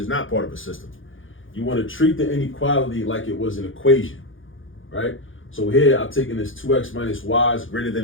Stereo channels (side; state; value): right; late; 0.58 ms